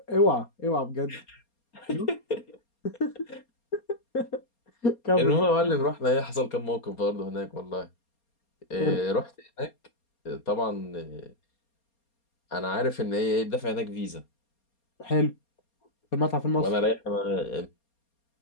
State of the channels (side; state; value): right; late; 4.3 ms